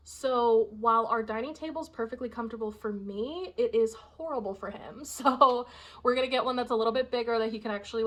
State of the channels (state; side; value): identical; both; correlation 1.00